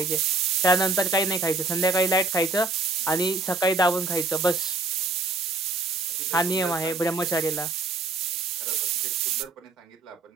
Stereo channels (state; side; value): quieter; left; 3.5 dB